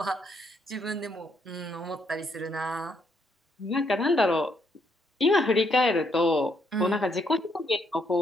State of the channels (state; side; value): normal; both; correlation 0.73